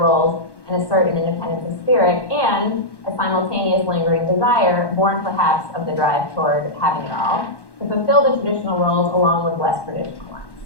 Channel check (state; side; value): late; right; 1.1 ms